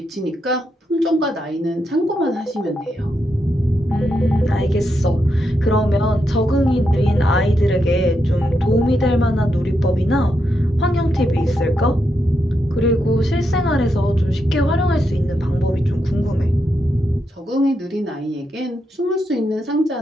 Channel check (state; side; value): normal; both; correlation 0.83